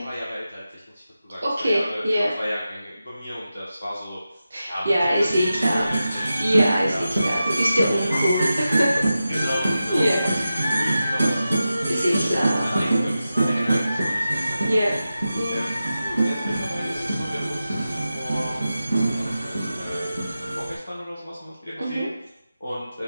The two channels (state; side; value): inverted; both; correlation -0.92